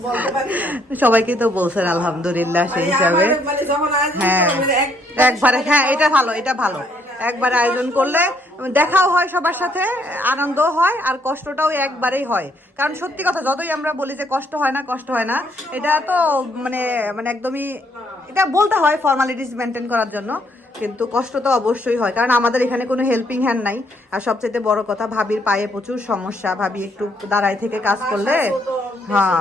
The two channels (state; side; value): normal; both; correlation 0.69